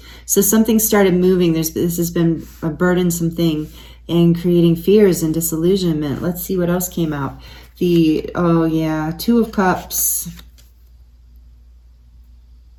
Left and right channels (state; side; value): identical; both; correlation 1.00